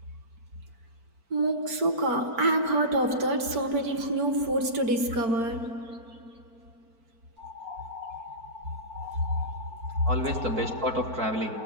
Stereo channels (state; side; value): late; left; 4.5 ms